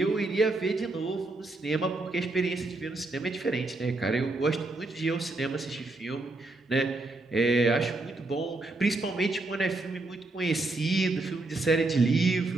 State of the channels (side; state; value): left; quieter; 3.1 dB